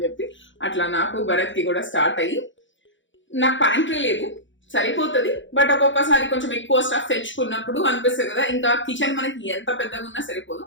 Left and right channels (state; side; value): late; right; 0.55 ms